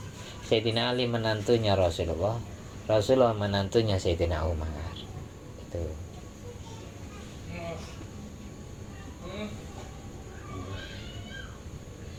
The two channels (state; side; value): identical; both; correlation 1.00